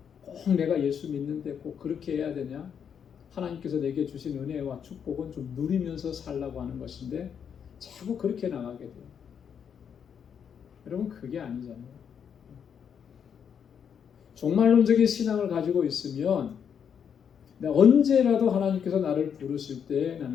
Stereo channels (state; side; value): quieter; right; 7.7 dB